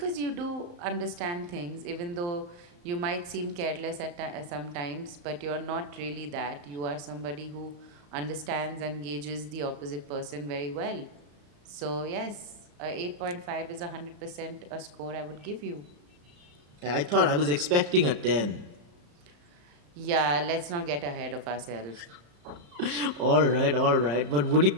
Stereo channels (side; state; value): left; late; 34 ms